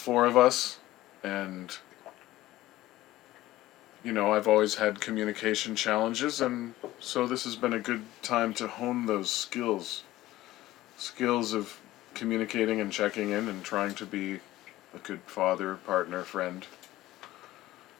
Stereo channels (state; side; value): quieter; right; 16.1 dB